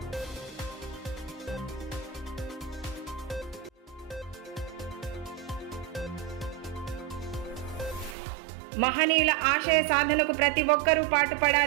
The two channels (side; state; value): left; drops out; at 8.2 s